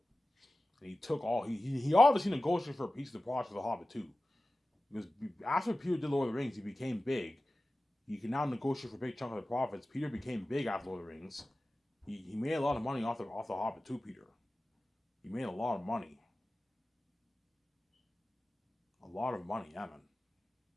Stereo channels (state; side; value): normal; both; correlation 0.96